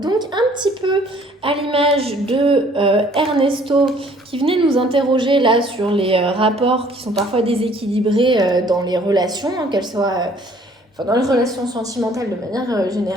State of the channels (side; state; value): both; normal; correlation 0.58